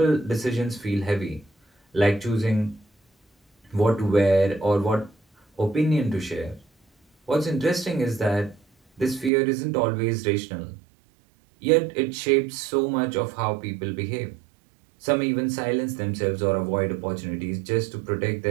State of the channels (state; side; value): drops out; left; at 9.3 s